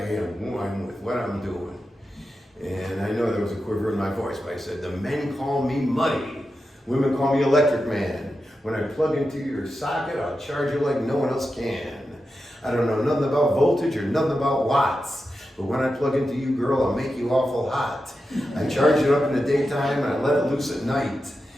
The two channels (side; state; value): both; normal; correlation 0.90